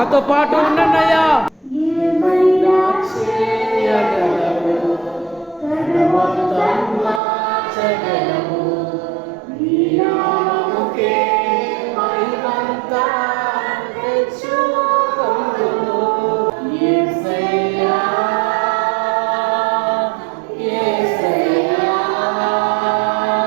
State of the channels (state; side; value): drops out; left; at 7.2 s